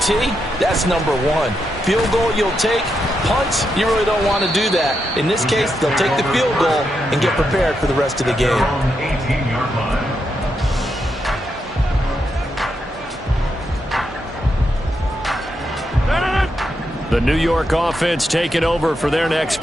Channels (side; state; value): both; normal; correlation 0.83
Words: that's number 1. Field goal you'll take. Punts, you really don't want to do that. In this case, they'll take the field goal and get prepared for the rest of the game. The New York offense taking over for their next